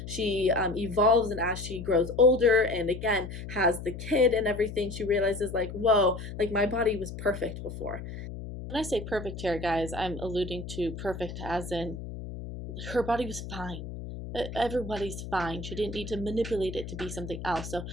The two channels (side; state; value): left; noise; hum, 9 dB below the sound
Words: she evolves and as she grows older and again has the kid and everything, she realizes like, whoa, like my body was perfect before. When I say perfect here, guys, I'm alluding to perfect as in her body was fine. Everybody's fine. She didn't need to manipulate it to be something else. So